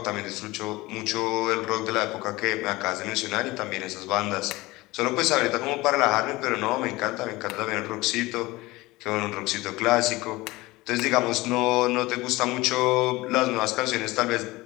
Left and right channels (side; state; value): right; quieter; 20.5 dB